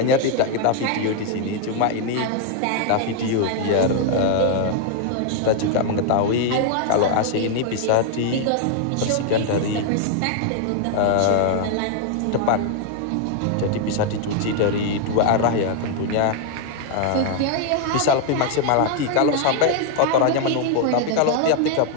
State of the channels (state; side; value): different; both; correlation 0.00